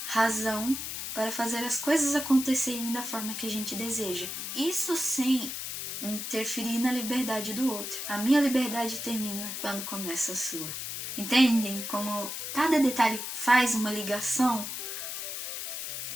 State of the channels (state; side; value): noise; left; hiss, 5 dB below the sound